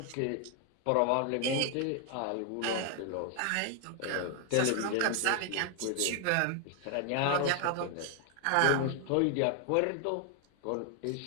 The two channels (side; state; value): both; different; correlation 0.00